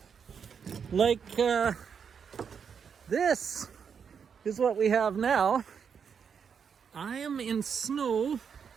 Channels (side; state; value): left; quieter; 6.8 dB